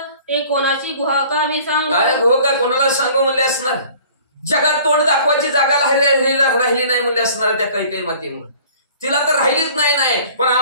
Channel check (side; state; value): both; inverted; correlation -0.50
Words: ते कोणाची गुहा का मी सांगू. काय गुहका कोणाला सांगू म्हणले असणार, जगात तोंड दाखवायची जागा राहिली नाही म्हणले असणार त्या कैकई मातेमुळे. तिला तर राहिलीच नाही पण